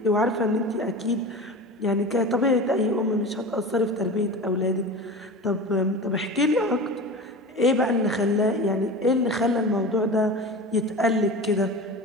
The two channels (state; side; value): normal; both; correlation 0.31